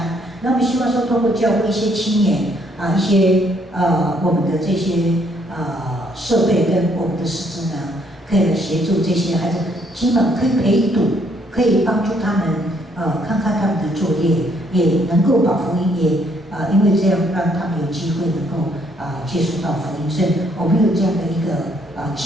那我们希望说通过教会一些青年一些我们的这些设备跟我们的师资呢，可以来协助这些孩子，基本可以陪读，可以帮助他们看看他们的作业，也能够把福音也因为这样让他们有机会能够接触到福音，所以我们有这样的一个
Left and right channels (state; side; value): normal; both; correlation 0.68